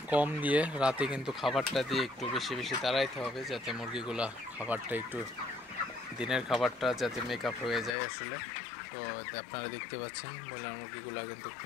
কম দিয়ে রাতে কিন্তু খাবারটা দিয়ে একটু বেশি বেশি তাড়াইতে হবে, যাতে মুরগিগুলা খাবারটা একটু দিনের খাবারটা যাতে মেকআপ হয়ে যায় আসলে। তো আপনারা দেখতে পাচ্ছেন ব্রয়লার মুরগিগুলা কিন্তু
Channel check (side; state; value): right; drops out; at 8.0 s